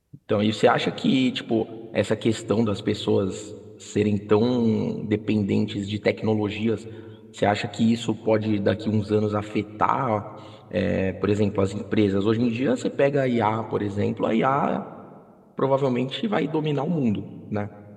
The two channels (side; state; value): both; identical; correlation 1.00